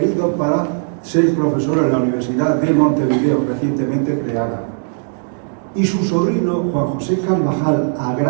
para ser profesor en la Universidad de Montevideo, recientemente creada. Y su sobrino, Juan José Carvajal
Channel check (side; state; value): left; silent; 64 dB below the other